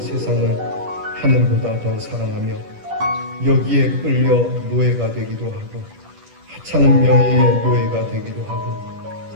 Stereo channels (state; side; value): late; left; 10 ms